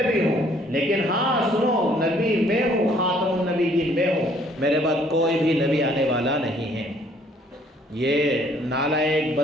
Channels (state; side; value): normal; both; correlation 0.62